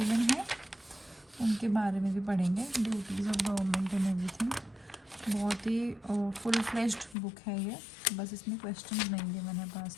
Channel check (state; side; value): drops out; right; at 7.2 s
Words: है, उनके बारे में भी पढ़ेंगे। Duties of government and everything, बहुत ही फुल फ्लेज्ड बुक है ये, बस इसमें क्वेश्चंस नहीं गिवन है